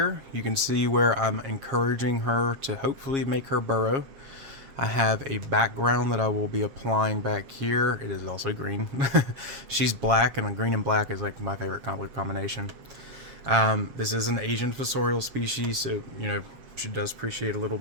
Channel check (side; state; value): left; late; 7.3 ms